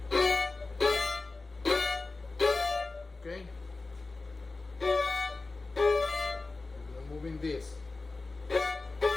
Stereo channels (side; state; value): right; quieter; 3.5 dB